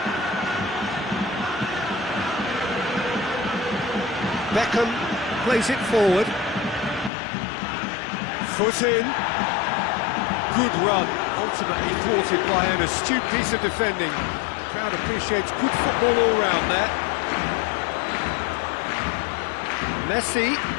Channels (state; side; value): drops out; right; at 7.1 s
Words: Beckham plays it forward. Foot in. Good run, ultimately thwarted by an astute piece of defending. The crowd appreciates good football all round there. Messi.